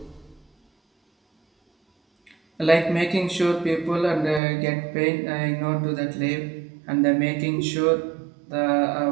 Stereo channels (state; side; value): drops out; left; at 4.4 s